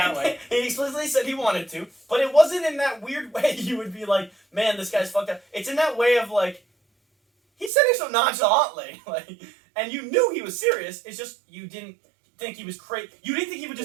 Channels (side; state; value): left; drops out; at 7.7 s